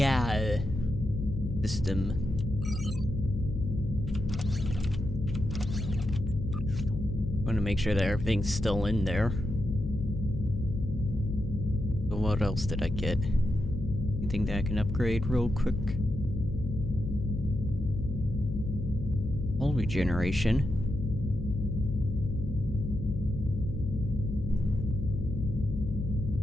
system. Want to make sure that everything's still in there. So what else did I get? Anything that I can upgrade real quick? Hull regeneration.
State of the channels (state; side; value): noise; left; hum, 5 dB below the sound